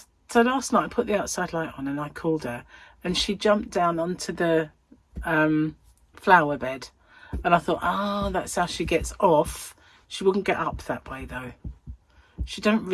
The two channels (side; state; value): both; identical; correlation 1.00